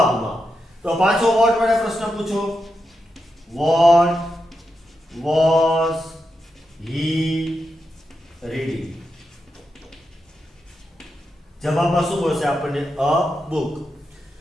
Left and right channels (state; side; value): normal; both; correlation 0.86